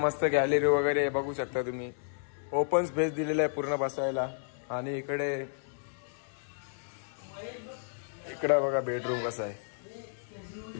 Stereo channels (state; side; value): silent; right; 56 dB below the other